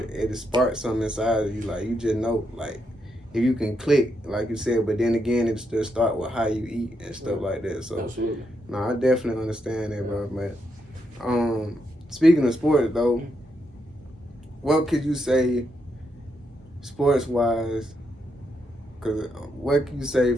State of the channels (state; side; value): normal; both; correlation 0.80